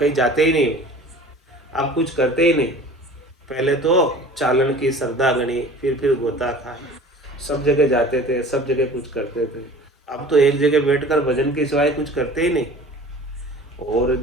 कहीं जाते ही नहीं, अब कुछ करते ही नहीं। पहले तो चालन की श्रद्धा गणी, फिर गोता खाए, सब जगह जाते थे, सब जगह कुछ करते थे। अब तो एक जगह बैठकर भजन के सिवाय कुछ करते ही नहीं। और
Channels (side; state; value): both; normal; correlation 0.43